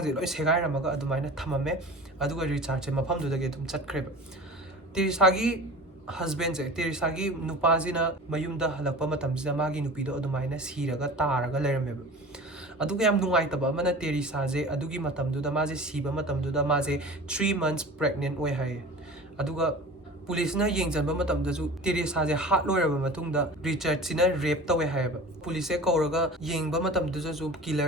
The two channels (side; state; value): both; normal; correlation 0.38